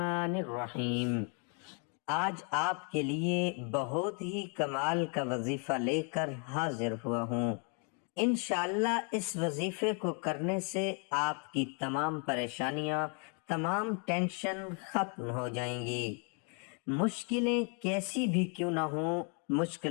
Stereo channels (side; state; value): right; quieter; 38.8 dB